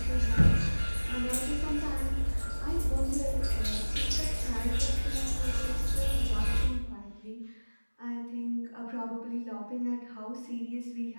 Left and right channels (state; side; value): inverted; both; correlation -1.00